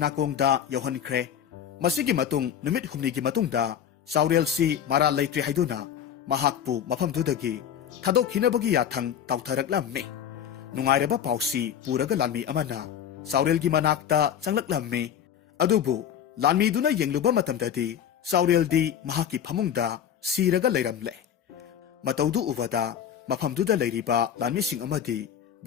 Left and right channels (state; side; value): quieter; right; 9.2 dB